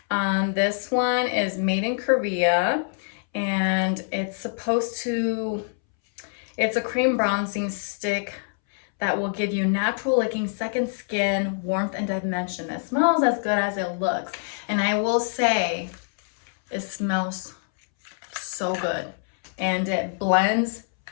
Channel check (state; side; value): silent; right; 62 dB below the other